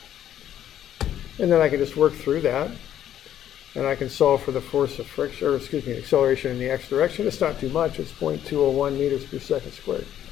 And then I can just work through that. And I can solve for the force of friction, or excuse me, acceleration in the x direction. It's not too much. It's 0.201 meters per second squared.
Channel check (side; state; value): right; quieter; 10.9 dB